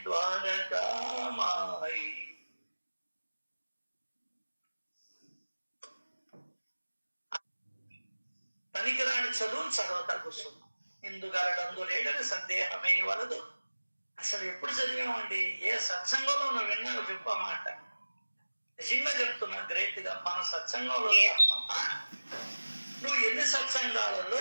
ద్వారకామాయి. పనికిరాని చదువును చదవతా కూర్చున్నాం. ఇందుగలడందు లేడని సందేహమే వలదు. అసలు ఎప్పుడు చదివామండి? ఏ సత్సంగంలో నువ్వు విన్నావు చెప్పు ఆ మాట. నిజంగా చెప్తున్నా, గ్రేట్ గా మన సత్సంగంలో తప్ప నువ్వు ఎన్ని సత్సంగాలలో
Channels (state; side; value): inverted; both; correlation -1.00